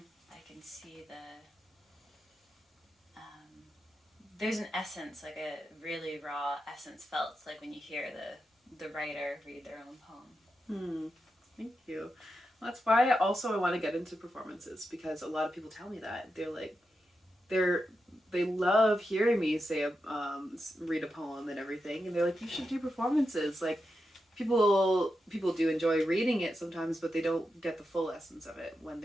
I can see there's an essence, like a really raw essence felt, like when you hear the writer read their own poem. Thank you. Well, that's why I want to get into performances, because a lot of people tell me that they love hearing me say read a poem and everything, and they're like, you should do performances. Like people do enjoy reading it sometimes, but they don't get the full essence of it when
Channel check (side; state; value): both; normal; correlation 0.88